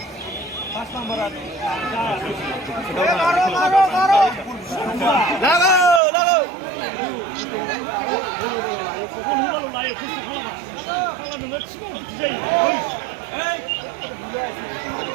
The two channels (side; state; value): left; drops out; at 6.0 s